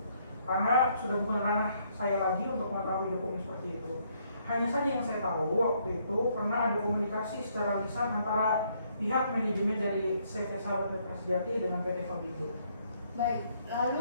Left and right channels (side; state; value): both; inverted; correlation -0.69